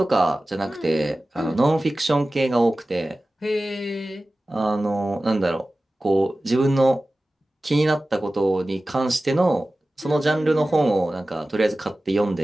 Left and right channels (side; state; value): both; normal; correlation 0.96